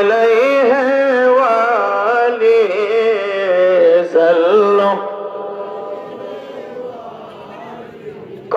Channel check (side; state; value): both; identical; correlation 1.00